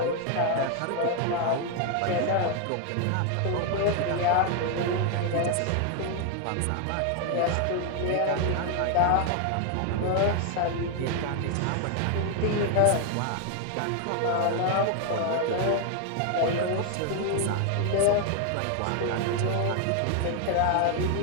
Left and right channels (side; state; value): both; different; correlation 0.00